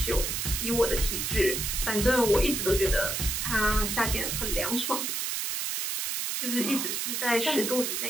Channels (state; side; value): noise; right; hiss, 1 dB below the sound